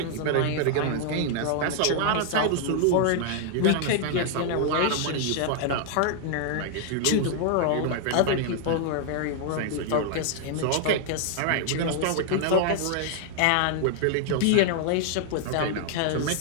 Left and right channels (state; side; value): different; both; correlation 0.00